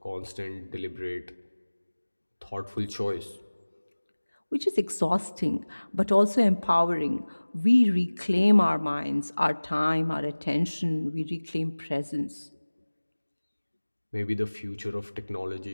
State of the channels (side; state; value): both; inverted; correlation -1.00